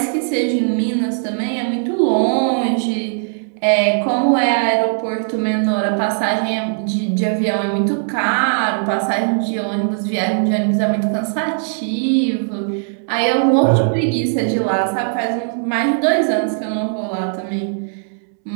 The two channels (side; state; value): left; silent; digital silence